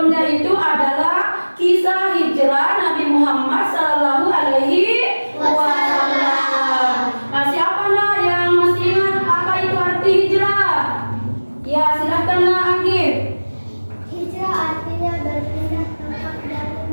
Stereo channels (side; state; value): both; inverted; correlation -1.00